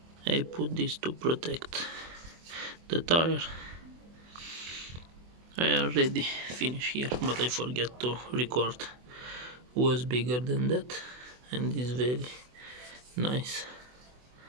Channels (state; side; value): late; left; 24 ms